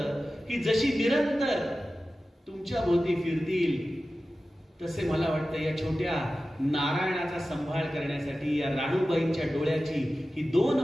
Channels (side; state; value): both; normal; correlation 0.94